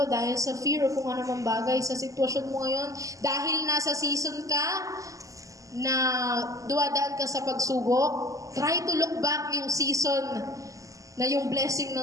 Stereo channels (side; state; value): left; late; 0.16 ms